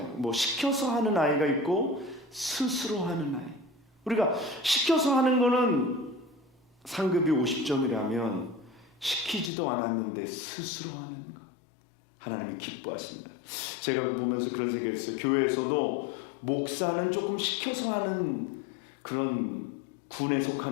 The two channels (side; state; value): right; drops out; at 9.5 s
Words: 뭐 시켜서 하는 아이가 있고 스스로 하는 아이. 우리가 시켜서 하는 거는 상급이 50점이라면 시키지도 않았는데 스스로 하는 것, 하나님이 기뻐하십니다. 제가 보면서 그런 생각이 있어요. 교회에서도 목사는 조금 시켜서 하는 그런 군에